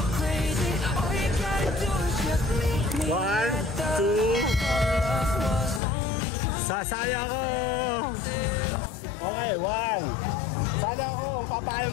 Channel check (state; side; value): drops out; right; at 5.8 s